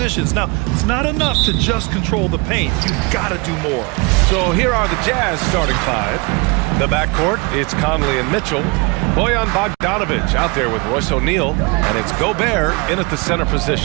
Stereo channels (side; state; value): left; quieter; 28.9 dB